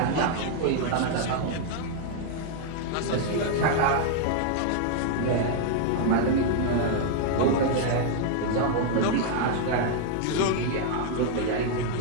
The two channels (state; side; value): different; both; correlation 0.00